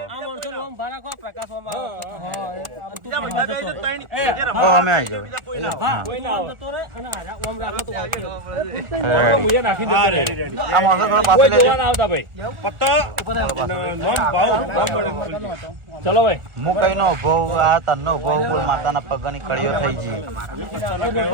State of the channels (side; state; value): left; late; 1.6 ms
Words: ઓ અમે આવી જાવ આ માણસો થોડા પાસે લેજો। ચલો ભાઈ, હું કઈ નો ભોવ આ તનનો ભોવ બોલ માતાના પગની કડીઓ થઈ ગઈ।